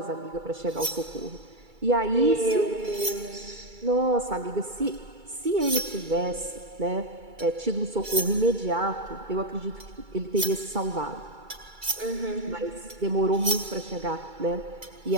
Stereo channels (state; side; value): late; left; 2.3 ms